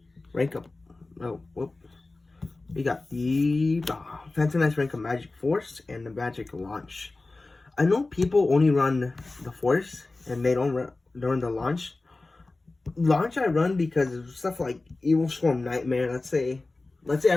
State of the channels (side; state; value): right; quieter; 3.3 dB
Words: rank up. We got the Phantom Knights rank of Magic Force and the Magic Launch. I know people only run the Force and they don't run the Launch. Launch I run because of stuff like Evil Swarm Nightmare. Let's say I